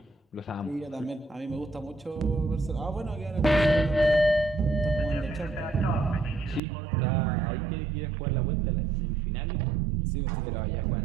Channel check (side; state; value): left; drops out; at 6.6 s